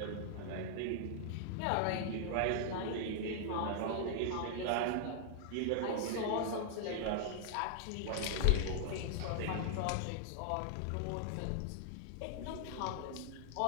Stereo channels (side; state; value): both; different; correlation -0.01